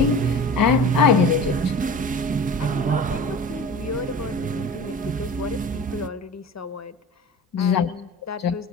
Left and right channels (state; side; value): normal; both; correlation 0.37